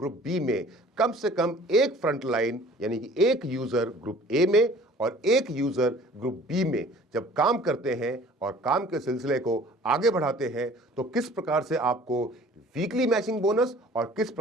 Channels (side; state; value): both; normal; correlation 0.50